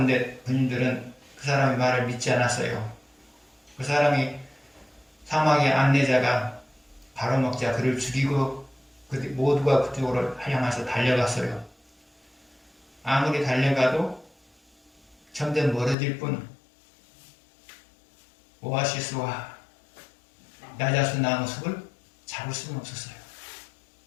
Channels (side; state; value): right; drops out; at 16.0 s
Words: 군인들은 그 사람의 말을 믿지 않았어요. 그 사람이 사막의 안내자가 바로 먹자 그를 죽이고 모두가 그쪽으로 향해서 달려갔어요. 아무리 달려가도 점점 멀어질 뿐 오아시스와 야자수 나무 숲을 잡을 수는 없었어요.